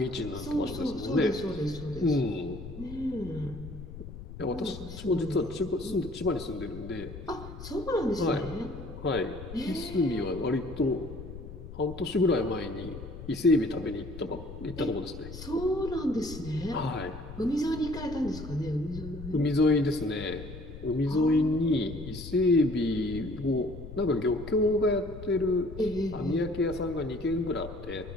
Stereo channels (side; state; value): left; noise; rumble, 12 dB below the sound